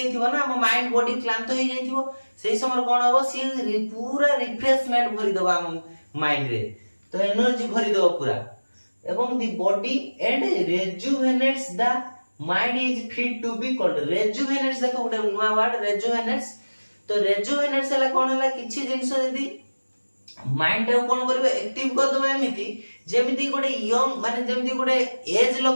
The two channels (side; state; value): both; inverted; correlation -1.00